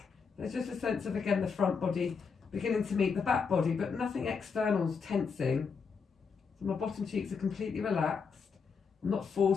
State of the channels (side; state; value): right; quieter; 5.6 dB